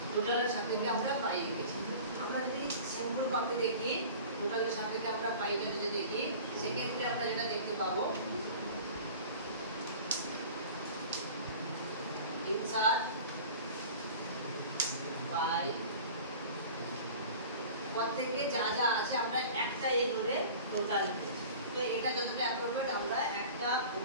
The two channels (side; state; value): both; inverted; correlation -0.40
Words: টোটালের সাপেক্ষে আমরা পাই এঁকেছি। আমরা যদি সিম্পল কপি দেখি, টোটালের সাপেক্ষে আমরা পাইটা যদি দেখি, সেক্ষেত্রে আমরা যেটা দেখতে পাবো, ইনসার্ট পাই, প্রত্যেকে যা যা আছে আমরা একটা ধরে টোটাল। তো এটা যতটা অ্যাপ্রোপ্রিয়েট, আমরা একটা